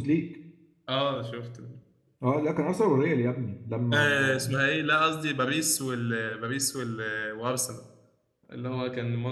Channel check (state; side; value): identical; both; correlation 1.00